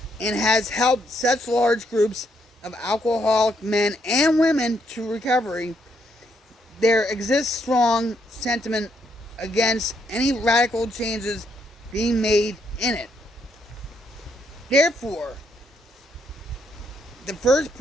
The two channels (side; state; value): both; normal; correlation 0.74